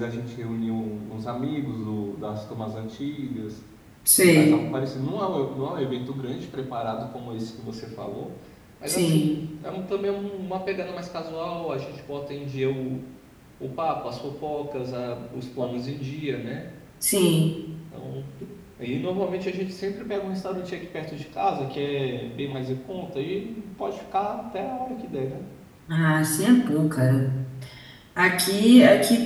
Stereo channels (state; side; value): identical; both; correlation 1.00